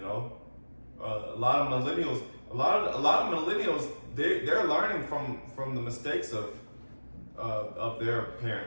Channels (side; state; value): both; inverted; correlation -1.00